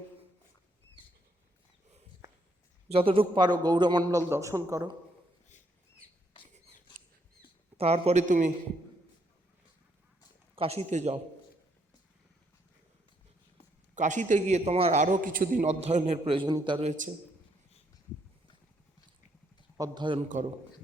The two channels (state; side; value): normal; both; correlation 0.73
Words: যতটুকু পারো গৌরমণ্ডল দর্শন করো, তারপরে তুমি কাশীতে যাও। কাশীতে গিয়ে তোমার আরও কিছুদিন অধ্যয়নের প্রয়োজনীয়তা রয়েছে, অধ্যয়ন করো।